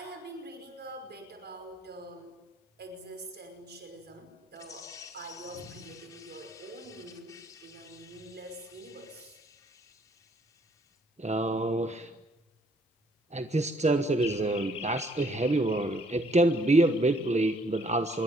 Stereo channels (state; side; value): normal; both; correlation 0.65